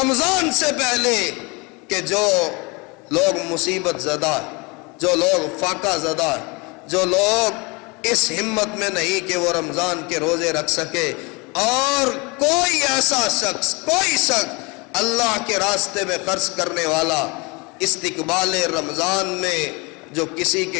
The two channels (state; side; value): quieter; right; 28.2 dB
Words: سے پہلے کہ جو لوگ مصیبت زدہ، جو لوگ فاقہ زدہ، جو لوگ اس ہمت میں نہیں کہ وہ رمضان کے روزے رکھ سکے، اور کوئی ایسا شخص، کوئی شخص اللہ کے راستے میں خرچ کرنے والا استقبال رمضان میں جو کسی کے